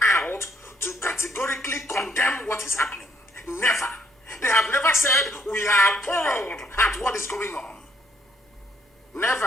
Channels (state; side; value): normal; both; correlation 0.70